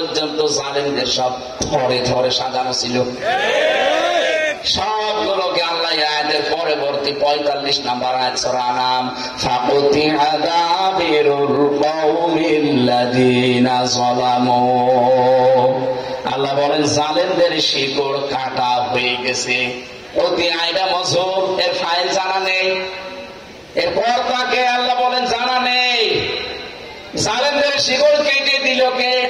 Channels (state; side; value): identical; both; correlation 1.00